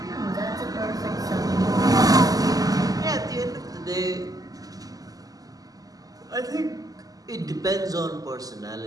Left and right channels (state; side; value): late; left; 0.17 ms